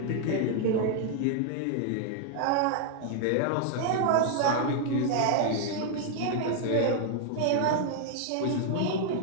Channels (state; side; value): different; both; correlation 0.00